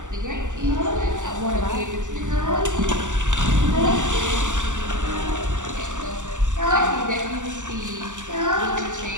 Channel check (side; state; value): left; late; 0.86 ms